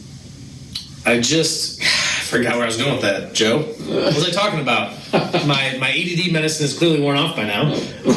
forgot where I was going with that. Joe, what was I talking about? My ADD medicine is clearly worn off by now.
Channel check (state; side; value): identical; both; correlation 1.00